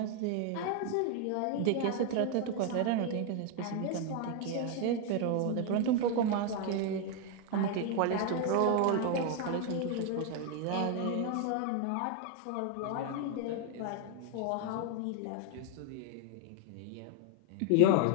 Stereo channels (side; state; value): both; different; correlation 0.01